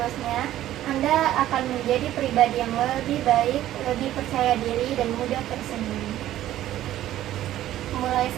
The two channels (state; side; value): quieter; left; 13.4 dB